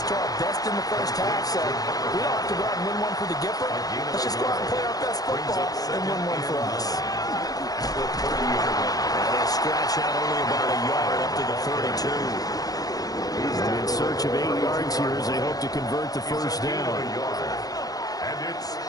to our best in the first half, so we don't have to go out and win one for the Gipper. Let's just go out and play our best football and win one for us. And they'll scratch out only about a yard up to the 32. In search of 8 yards here as they hope to convert the first down.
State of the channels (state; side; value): late; right; 0.18 ms